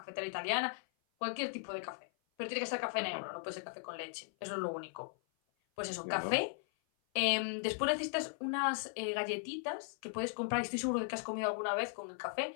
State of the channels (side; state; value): right; silent; 53 dB below the other